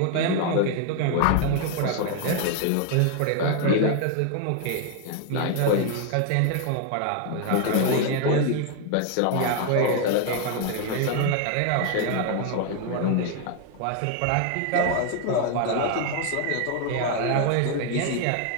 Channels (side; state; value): both; different; correlation 0.00